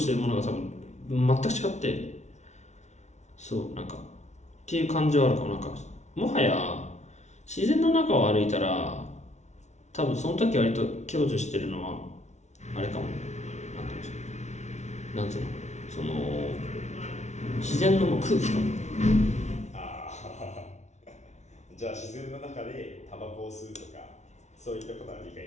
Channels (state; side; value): late; right; 0.33 ms